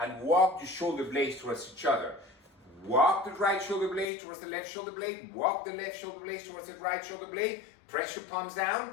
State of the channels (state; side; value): drops out; right; at 4.0 s